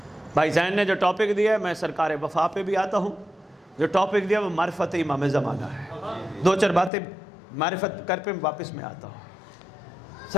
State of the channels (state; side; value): drops out; right; at 6.9 s